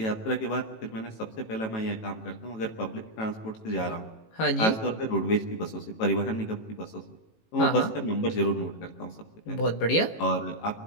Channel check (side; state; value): right; late; 18 ms